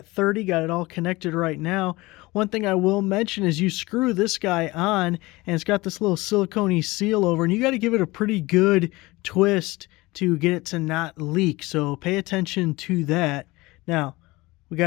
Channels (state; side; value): quieter; right; 21.4 dB